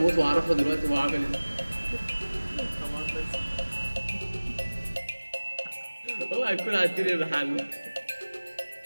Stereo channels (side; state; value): both; inverted; correlation -1.00